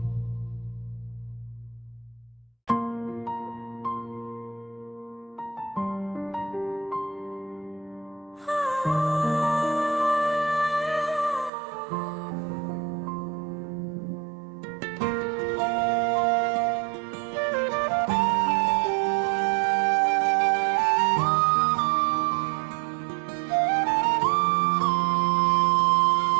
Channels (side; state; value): left; drops out; at 11.5 s